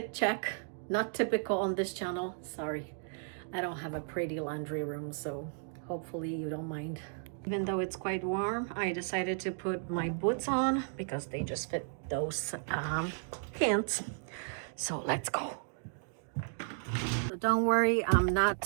check. Not typical on this channel, sorry. I don't have a pretty laundry room, so hopefully you don't mind. Even though it's quite warm, I decided to put my boots on because they just fit those pants. So let's go. So don't worry, I'm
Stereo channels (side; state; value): left; silent; digital silence